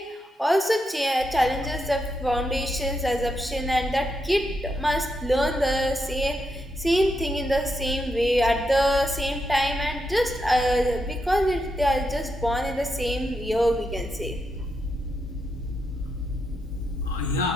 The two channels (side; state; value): both; normal; correlation 0.83